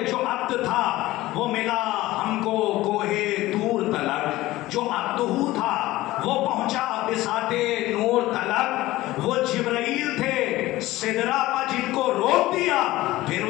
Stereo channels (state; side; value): quieter; right; 17.4 dB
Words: جو عبد تھا وہ ملا ہم کو کوہ طور تلک جو عبدہو تھا وہ پہنچا بساط نور تلک وہ جبرائیل تھے سدرہ پر جن کو روک دیا پھر